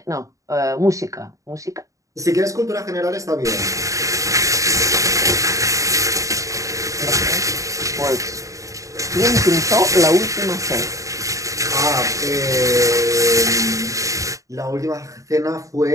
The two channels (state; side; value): late; left; 0.16 ms